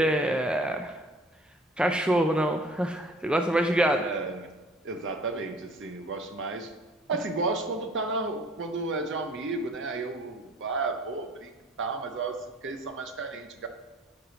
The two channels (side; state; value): both; normal; correlation 0.51